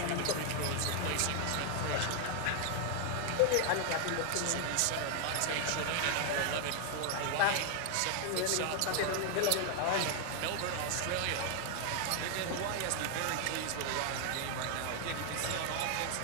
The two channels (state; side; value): different; both; correlation 0.00